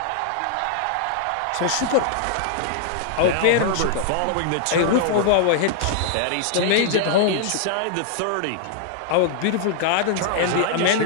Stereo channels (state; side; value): different; both; correlation -0.01